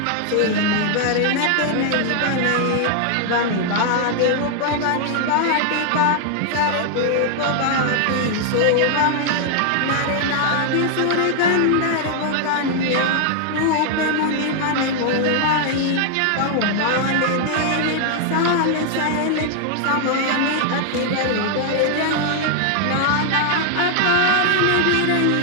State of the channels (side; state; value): both; different; correlation 0.00